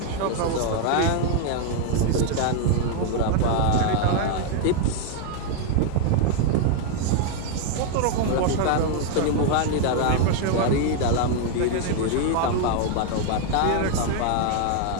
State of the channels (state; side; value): different; both; correlation 0.00